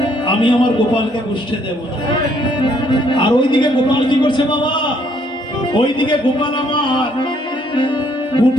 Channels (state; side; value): normal; both; correlation 0.67